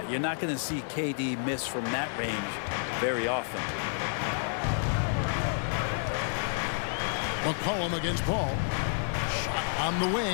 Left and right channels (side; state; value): right; silent; digital silence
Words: you're not going to see KD miss from that range very often. McCollum against Paul. Shot on the